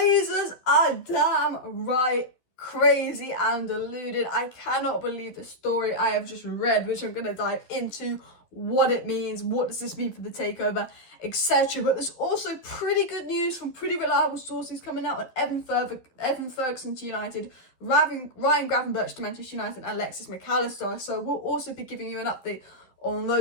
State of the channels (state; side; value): late; right; 11 ms